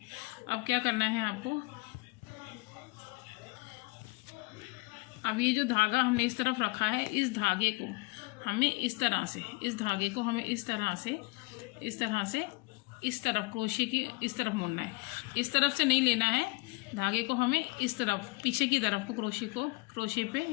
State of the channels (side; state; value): right; quieter; 26.6 dB